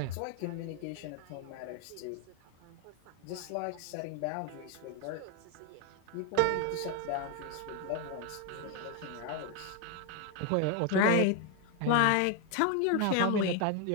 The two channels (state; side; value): different; both; correlation 0.01